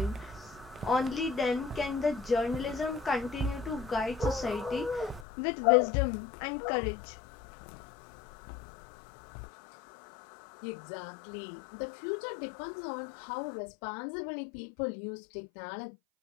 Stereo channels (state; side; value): drops out; right; at 5.2 s